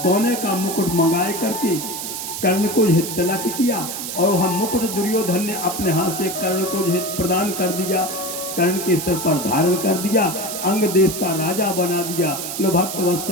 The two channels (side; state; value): right; noise; hiss, 6 dB below the sound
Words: का मुकुट मंगाए करके कर्ण को यह तिलक किया और वह मुकुट दुर्योधन ने अपने हाथ से कर्ण को यह प्रदान कर दिया, कर्ण के सिर पर धारण कर दिया, अंग देश का राजा बना दिया। लो भक्त